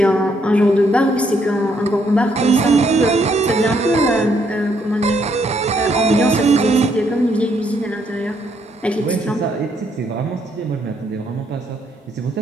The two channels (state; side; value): normal; both; correlation 0.72